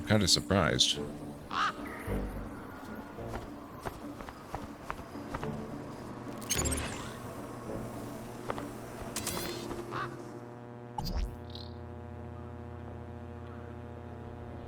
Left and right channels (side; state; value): both; identical; correlation 1.00